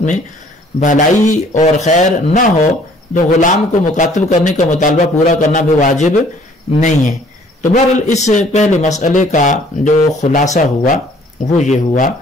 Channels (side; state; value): both; normal; correlation 0.58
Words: میں بھلائی اور خیر نہ ہو تو غلام کو مکاتب کرنے کا مطالبہ پورا کرنا بھی واجب نہیں ہے۔ تو بہرحال اس پہلے مسئلے کا جو خلاصہ ہوا وہ یہ ہوا